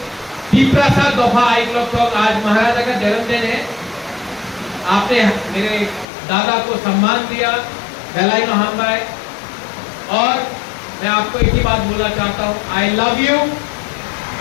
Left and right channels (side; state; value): right; drops out; at 6.1 s